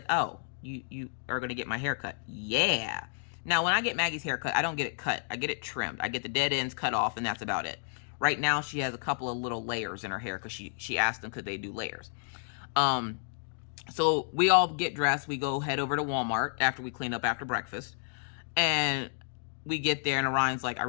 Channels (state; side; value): silent; right; digital silence